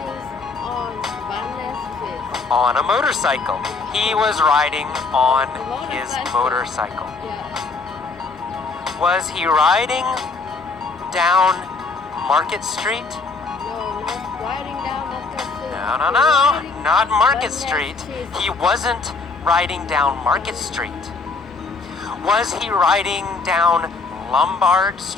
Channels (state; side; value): quieter; right; 4.1 dB